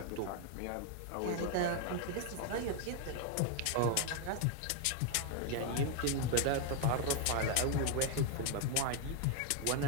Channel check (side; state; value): both; different; correlation 0.00